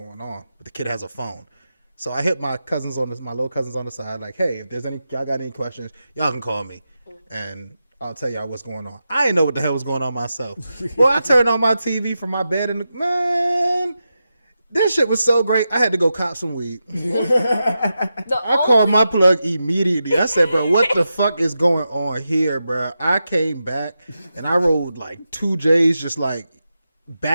on. But the kid has a phone. So I hit my little cousins on the side, like, hey, if there's y'all got any questions, y'all can call me. And I'll tell y'all what's going on. I didn't know what the hell was going on myself. Well, I turned on my TV from my bed and, man, this shit was so great. I had to go cop some weed. I called my plug immediately. I said, bro, what the fuck is going on here, bro? I came back and I rolled like 2 J's just like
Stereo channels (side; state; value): both; inverted; correlation -0.89